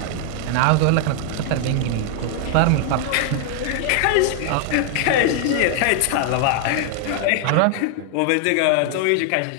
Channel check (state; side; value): different; both; correlation 0.00